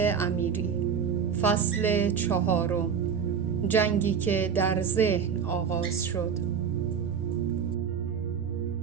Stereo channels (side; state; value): left; quieter; 7.0 dB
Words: امیری. فصل 4، جنگی که در ذهن آغاز شد.